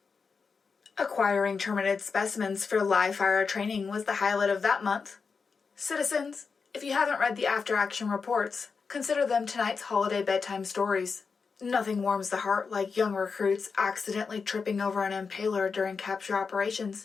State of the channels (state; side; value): quieter; right; 5.2 dB